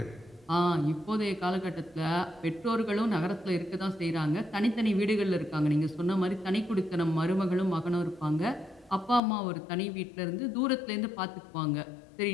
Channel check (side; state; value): right; drops out; at 9.2 s